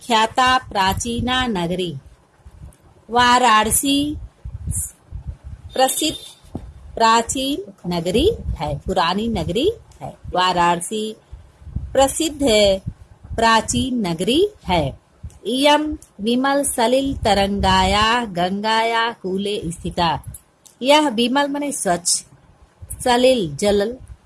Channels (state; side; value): identical; both; correlation 1.00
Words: प्राचीना नगरी। वाराणसी प्रसिद्ध प्राचीन नगरी है, पुरानी नगरी है। वाराणसी प्रसिद्ध प्राचीन नगरी है। इयं विमल सलिल तरंगाया गंगाया कूले स्थिता। यह विमल माने स्वच्छ, सलिल जल,